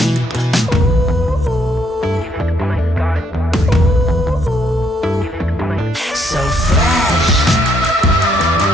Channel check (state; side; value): normal; both; correlation 0.71